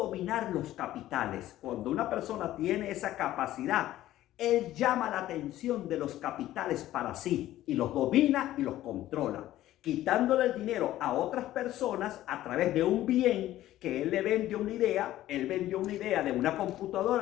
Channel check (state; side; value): quieter; right; 14.3 dB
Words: los capitales. Cuando una persona tiene esa capacidad, él llama la atención de los capitales para sí y los domina y los controla, quitándole el dinero a otras personas a través de un bien que él le vende una idea. Él vendió una idea de una